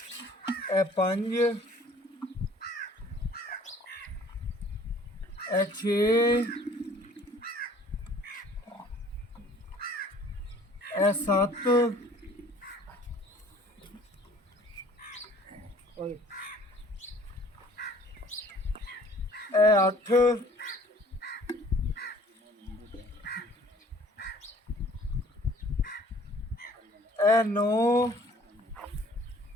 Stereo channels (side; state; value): both; normal; correlation 0.53